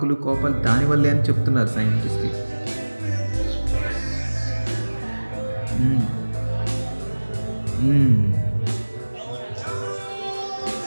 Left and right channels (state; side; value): inverted; both; correlation -1.00